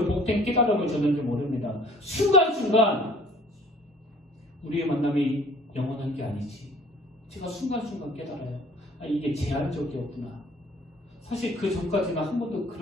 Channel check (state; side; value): normal; both; correlation 0.52